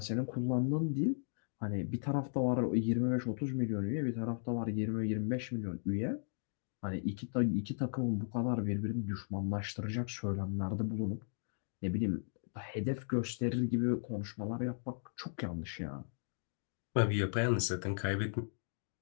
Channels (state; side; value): silent; right; digital silence